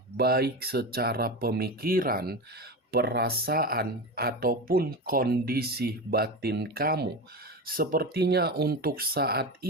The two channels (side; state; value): both; normal; correlation 0.23